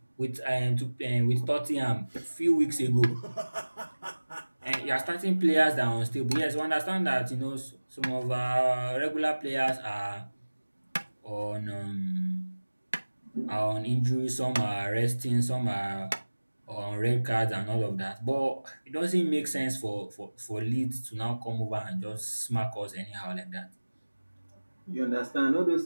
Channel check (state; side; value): inverted; both; correlation -1.00